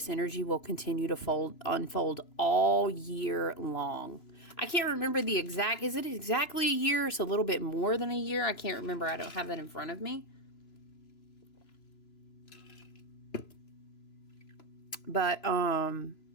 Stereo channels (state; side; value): late; right; 3.0 ms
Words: energy will continue to unfold all year long. I can't remember the exact, is it exactly a year? It's a little bit more than a year. I can't remember. I don't have that in front of me. But,